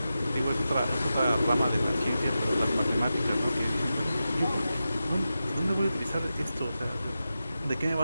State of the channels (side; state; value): both; inverted; correlation -0.91